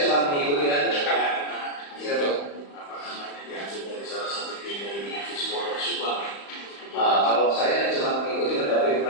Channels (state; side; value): late; right; 35 ms